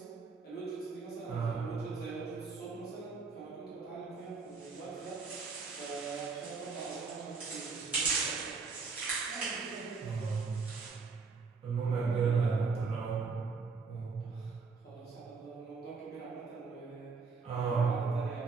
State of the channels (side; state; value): left; quieter; 4.7 dB